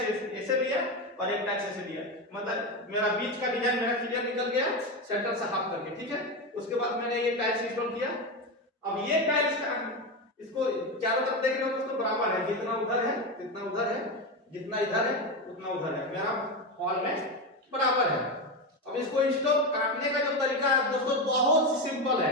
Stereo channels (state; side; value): normal; both; correlation 0.15